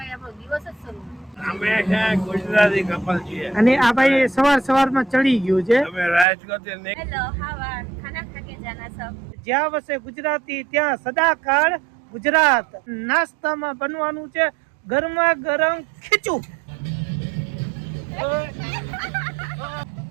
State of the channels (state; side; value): drops out; left; at 6.2 s